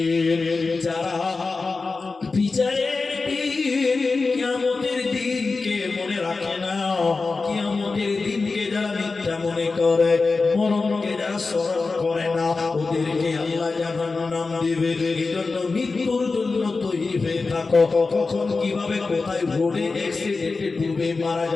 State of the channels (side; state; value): right; quieter; 4.0 dB